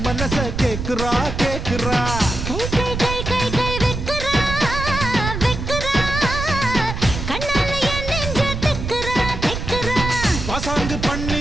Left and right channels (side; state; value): right; noise; rumble, 5 dB below the sound